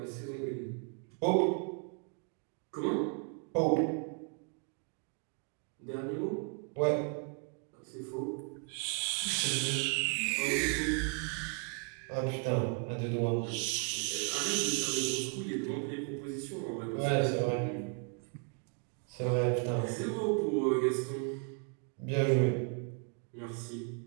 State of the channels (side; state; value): left; quieter; 39.7 dB